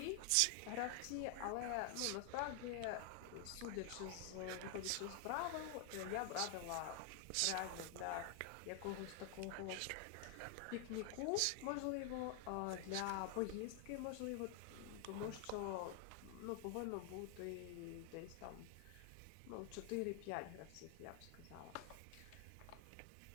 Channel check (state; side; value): different; both; correlation 0.00